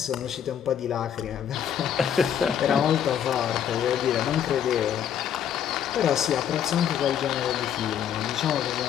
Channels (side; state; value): right; quieter; 9.1 dB